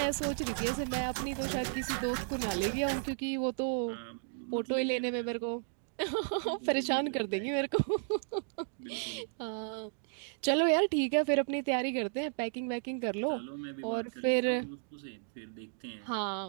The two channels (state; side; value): silent; left; digital silence